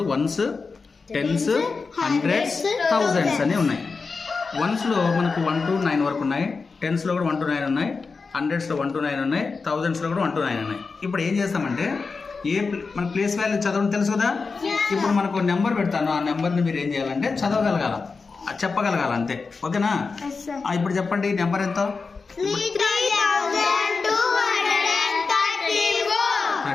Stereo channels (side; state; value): right; quieter; 4.5 dB